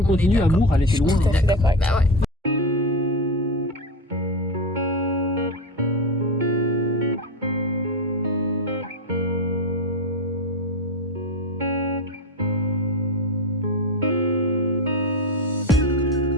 on continue, amour, elle était loin. Tout à fait d'accord avec ça. Ouais.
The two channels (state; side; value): normal; both; correlation 0.18